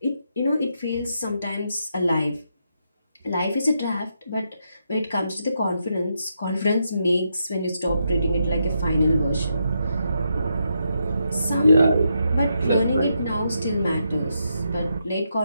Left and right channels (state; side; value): inverted; both; correlation -0.81